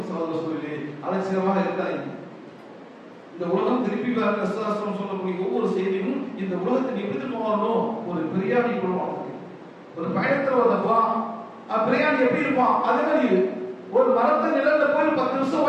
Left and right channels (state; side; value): identical; both; correlation 1.00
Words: சகோதர சொல்லி அலட்சியமாக இருக்காங்க. இந்த உலகம் திருப்பி சொல்லக்கூடிய ஒவ்வொரு செய்தியும் இந்த உலகத்தை எப்படி போகணும்? ஒரு பிரியாணி கொள்வாங்க. ஒரு பயணத்துல வந்தப்பா பிரியாணி எப்படி இருப்பான்? அதே மாதிரி ஒரு மரத்து நிழல்ல போய் 10 நிமிஷம்